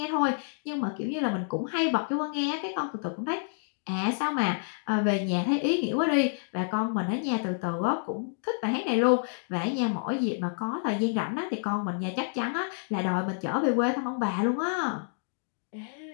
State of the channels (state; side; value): silent; right; digital silence